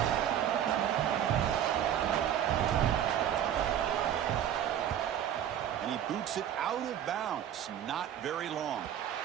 And he boots it out of bounds. Not very long.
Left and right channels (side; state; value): left; quieter; 10.2 dB